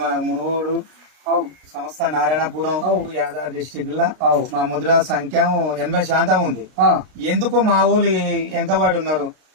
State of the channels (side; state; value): left; late; 33 ms